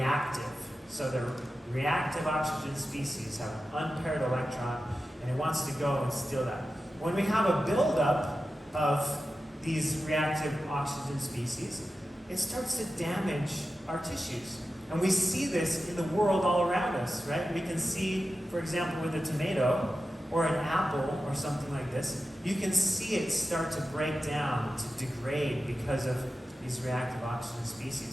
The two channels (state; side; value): normal; both; correlation 0.93